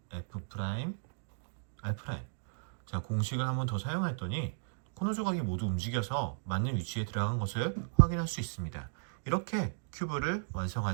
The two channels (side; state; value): left; silent; digital silence